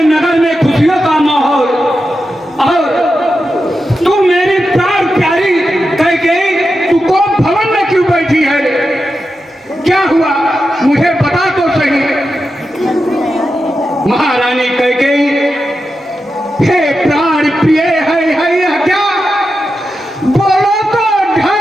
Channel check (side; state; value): both; normal; correlation 0.89